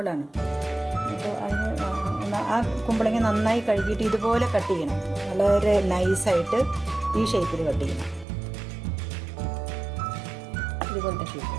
അപ്പോൾ അതിന് ആ കുമ്പളങ്ങ നന്നായി കഴുകിയിട്ട് ഇതുപോലെ കട്ട് ചെയ്യണം. വളരെ നൈസായിട്ട് ഈ ഷേപ്പിൽ കട്ട് ചെയ്യണം. ഇതുപോലത്തെ ഷേപ്പ്,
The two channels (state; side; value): drops out; left; at 8.2 s